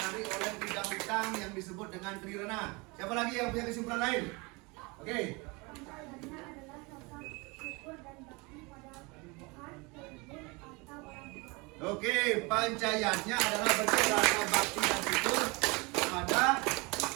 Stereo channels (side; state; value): left; quieter; 27.0 dB